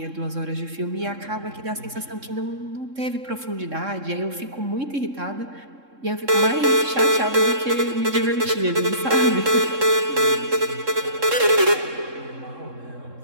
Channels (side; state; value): left; late; 3.7 ms